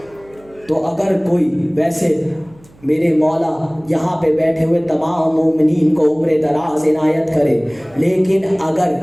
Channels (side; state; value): right; noise; hum, 28 dB below the sound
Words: تو اگر کوئی ویسے میرے مولا یہاں پہ بیٹھے ہوئے تمام مومنین کو عمر دراز عنایت کرے، لیکن اگر